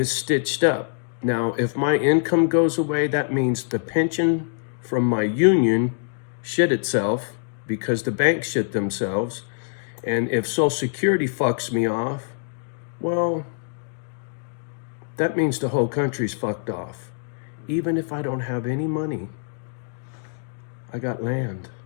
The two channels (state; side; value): silent; right; digital silence